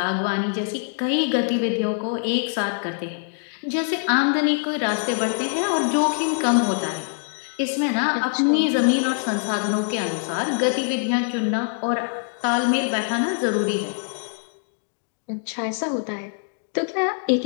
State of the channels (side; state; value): right; silent; 61 dB below the other